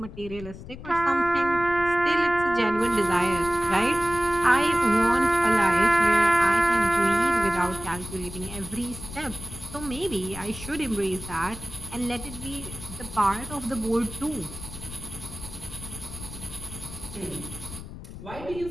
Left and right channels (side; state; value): left; noise; rumble, 13 dB below the sound